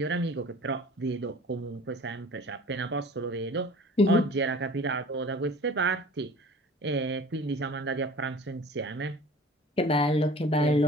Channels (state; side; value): normal; both; correlation 0.44